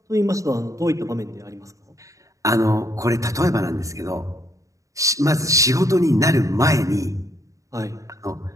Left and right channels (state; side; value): late; left; 0.16 ms